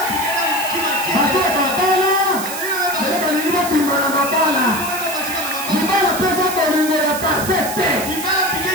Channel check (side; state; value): right; noise; hiss, 8 dB below the sound